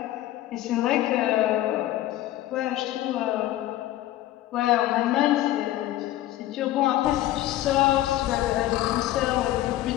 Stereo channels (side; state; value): right; quieter; 14.5 dB